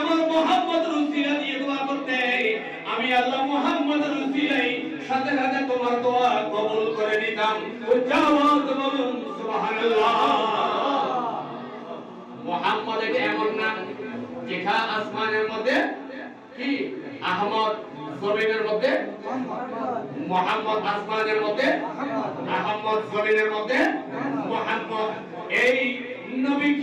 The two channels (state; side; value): identical; both; correlation 1.00